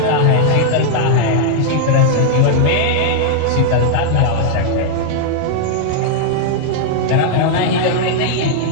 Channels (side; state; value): both; different; correlation -0.01